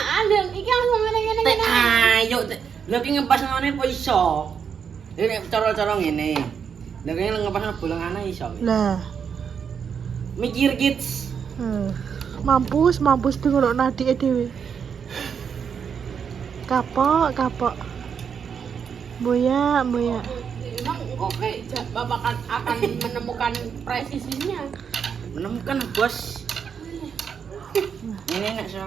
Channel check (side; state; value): left; quieter; 7.0 dB